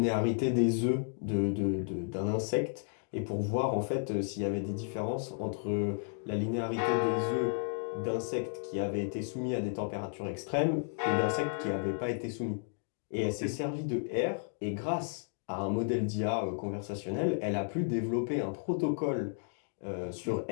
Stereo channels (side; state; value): right; silent; digital silence